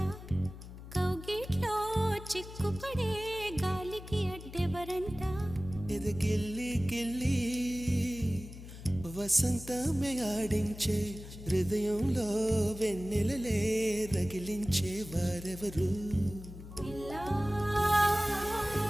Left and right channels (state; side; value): noise; left; hum, 13 dB below the sound